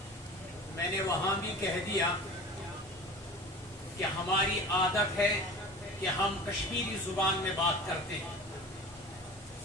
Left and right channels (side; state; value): both; normal; correlation 0.38